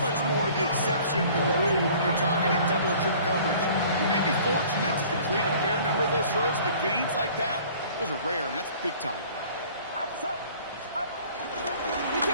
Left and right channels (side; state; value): both; inverted; correlation -0.50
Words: much more the exception than the rule when you're targeting double or triple coverage. You may be fortunate to complete a fair number of those throws, but gains like that, those are rare, and that's big time.